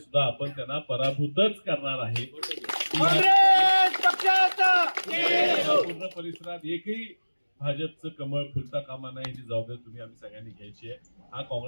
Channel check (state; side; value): inverted; both; correlation -1.00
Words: आपण त्यांना पराभूतच करणार आहे. पूर्ण परिसरात एकही भाजपचं कमळ फुलता कामा नाही, ही जबाबदारी तुम्ही आम्ही सगळ्यांनी घ्यायची आहे. हा